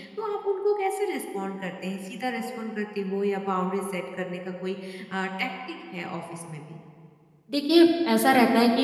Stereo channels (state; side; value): identical; both; correlation 1.00